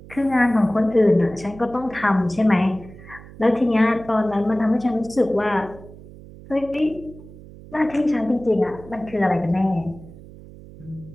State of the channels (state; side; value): noise; right; hum, 18 dB below the sound